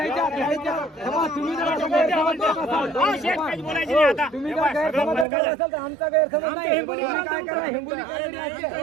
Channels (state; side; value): drops out; left; at 5.2 s